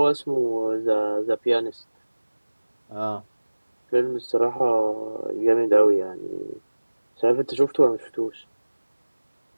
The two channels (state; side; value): inverted; both; correlation -1.00